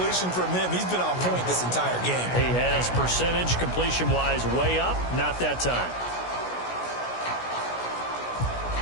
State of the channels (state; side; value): late; right; 16 ms